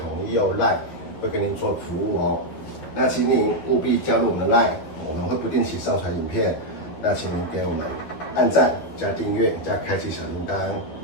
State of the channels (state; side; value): late; right; 12 ms